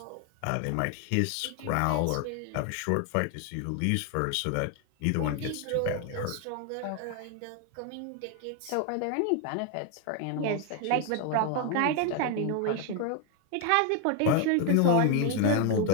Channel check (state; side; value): different; both; correlation 0.00